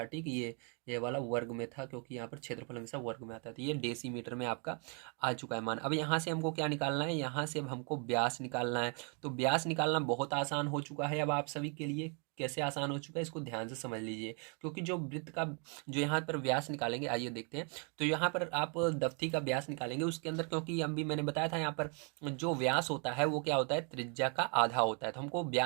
ठीक है। ये वाला वर्ग में था, क्योंकि यहाँ पर क्षेत्रफल हमेशा वर्ग में आता है, तो ये डेसीमीटर में आपका आ चुका है मान। अब यहाँ से हमको क्या निकालना है, यहाँ से अब हमको व्यास निकालना है। तो व्यास निकालना बहुत आसान हो चुका है अब आप सभी के लिए, कैसे आसान हो चुका है, इसको ध्यान से समझ लीजिए। क्योंकि जो वृत्त का जो यहाँ पर व्यास निकालेंगे, आइए देखते हैं। तो यहाँ पर आप दफ्ती का व्यास निकालेंगे, उसके अंदर क्योंकि अभी मैंने बताया था यहाँ पर जो व्यास होता है वो क्या होता है, त्रिज्या का आधा होता है। तो हमको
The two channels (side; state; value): left; quieter; 37.3 dB